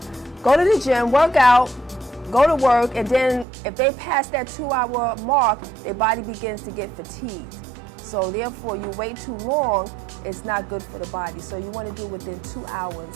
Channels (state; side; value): drops out; left; at 3.5 s